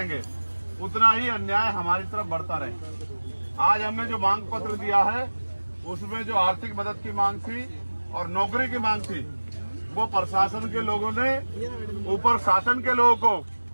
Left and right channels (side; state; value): both; inverted; correlation -1.00